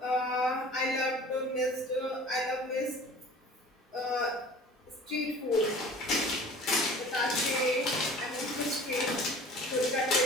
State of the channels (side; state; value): both; normal; correlation 0.45